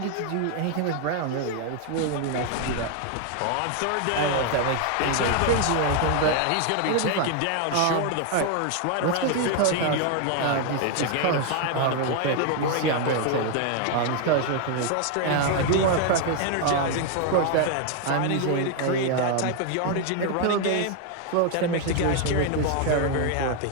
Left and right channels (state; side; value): different; both; correlation 0.00